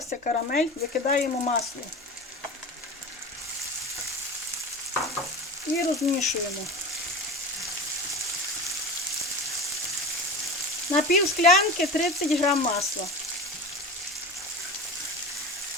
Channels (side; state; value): both; normal; correlation 0.30